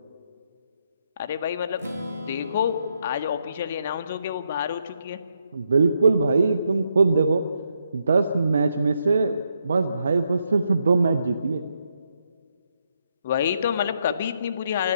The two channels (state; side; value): inverted; both; correlation -0.79